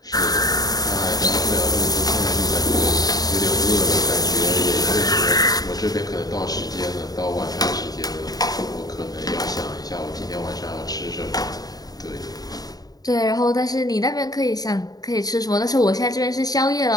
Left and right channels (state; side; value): late; right; 0.18 ms